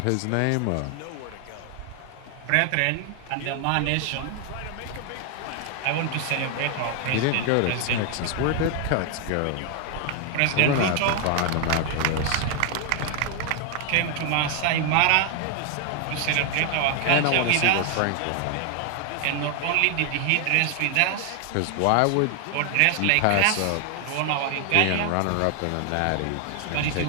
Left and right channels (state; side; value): different; both; correlation 0.00